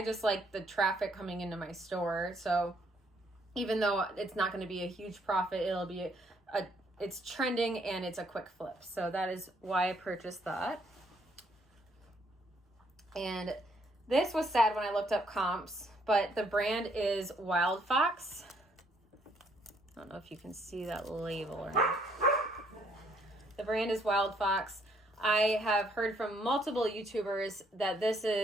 just like the traffic coming into my store. So even though it's not going to be a huge profit, it'll be it's trending and it's a quick flip. So that is why I purchased that. And this was sad when I looked up comps, but the brand is Wild Fox. I don't know if you can see that label or not. The brand is Wild Fox. I have heard from multiple YouTubers that this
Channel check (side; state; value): both; normal; correlation 0.68